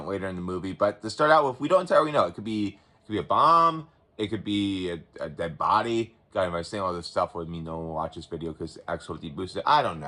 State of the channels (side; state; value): both; identical; correlation 1.00